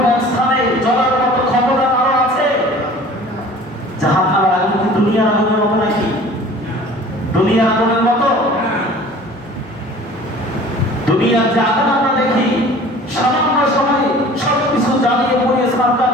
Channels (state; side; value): normal; both; correlation 0.46